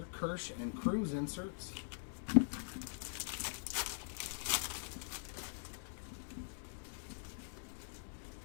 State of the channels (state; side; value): silent; right; digital silence